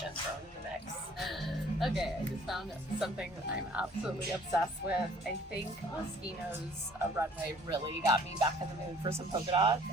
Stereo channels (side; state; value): both; normal; correlation 0.55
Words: thrown in the mix. Okay, I just found something that I'm absolutely obsessed with. I think Moschino's runway really got me back in the mood for some polka dots,